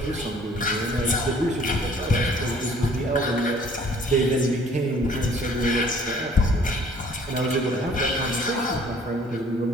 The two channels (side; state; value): both; normal; correlation 0.56